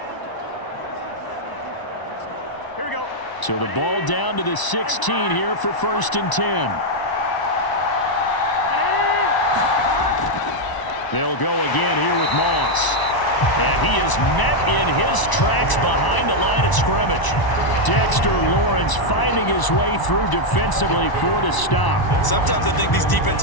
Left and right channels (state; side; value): late; right; 1.0 ms